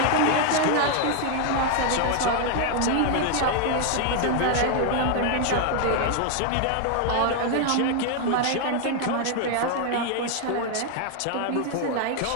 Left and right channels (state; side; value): different; both; correlation 0.00